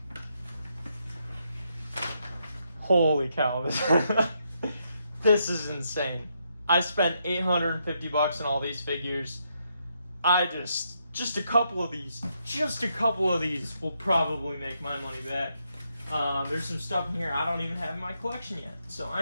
Holy cow, this is insane. I spent $850 on all these figures. Just a couple of these will probably make my money back. There's some stuff in here I don't even have in my collection yet. So I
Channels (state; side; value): inverted; both; correlation -0.79